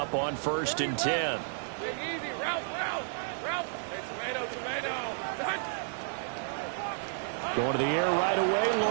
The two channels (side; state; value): left; silent; digital silence